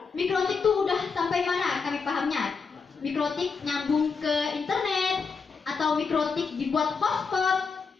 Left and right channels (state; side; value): quieter; right; 5.2 dB